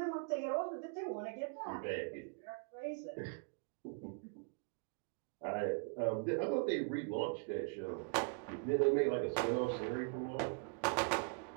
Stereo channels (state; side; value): quieter; left; 36.5 dB